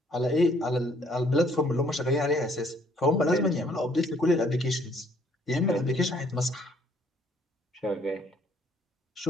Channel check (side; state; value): both; normal; correlation 0.64